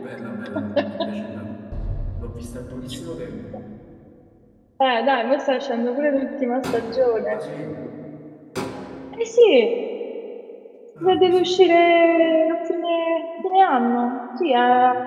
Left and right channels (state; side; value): identical; both; correlation 1.00